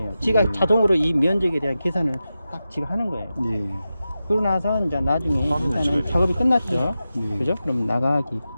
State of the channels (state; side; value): inverted; both; correlation -0.92